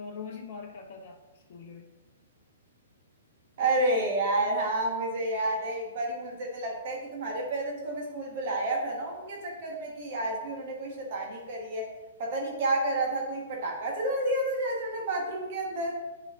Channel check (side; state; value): both; inverted; correlation -0.37